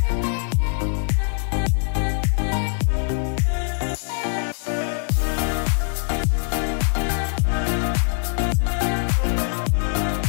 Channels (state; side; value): silent; right; 57 dB below the other